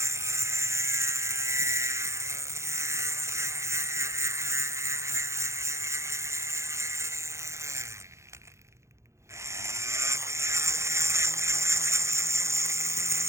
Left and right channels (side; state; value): left; late; 0.14 ms